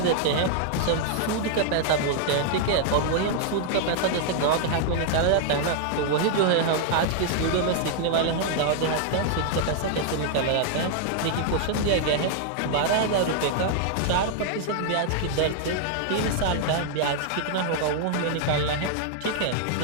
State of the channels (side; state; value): both; different; correlation -0.01